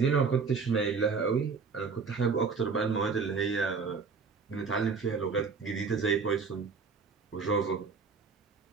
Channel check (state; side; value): quieter; left; 5.1 dB